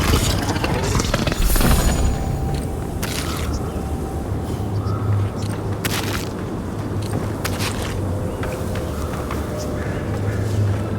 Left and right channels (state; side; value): identical; both; correlation 1.00